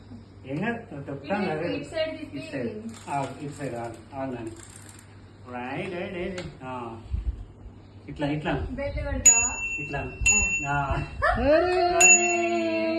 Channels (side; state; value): both; identical; correlation 1.00